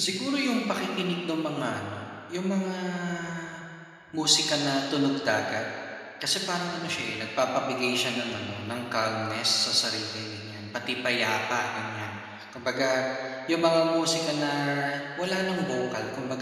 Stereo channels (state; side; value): identical; both; correlation 1.00